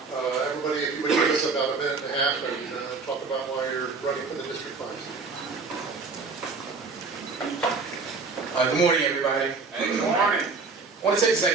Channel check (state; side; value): quieter; left; 4.4 dB